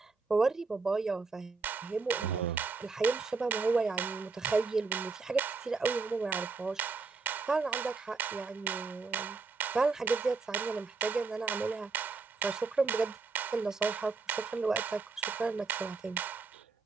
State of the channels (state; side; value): quieter; left; 4.3 dB